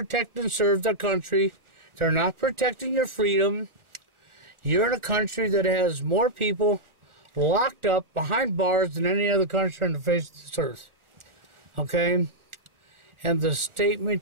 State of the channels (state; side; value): late; left; 1.4 ms